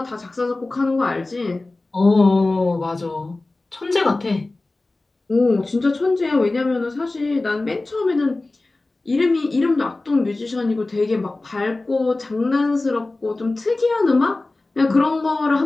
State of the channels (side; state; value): right; quieter; 3.1 dB